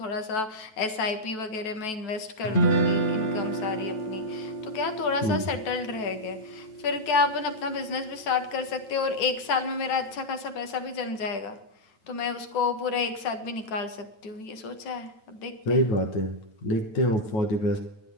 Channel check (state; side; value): late; right; 9.2 ms